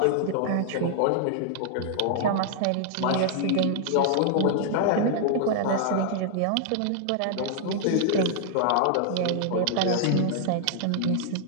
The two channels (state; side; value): different; both; correlation 0.00